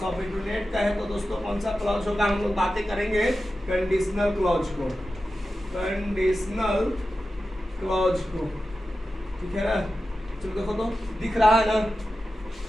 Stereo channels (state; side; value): normal; both; correlation 0.92